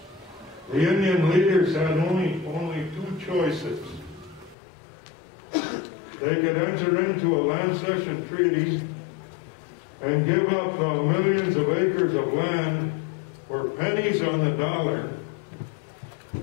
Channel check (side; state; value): right; drops out; at 4.5 s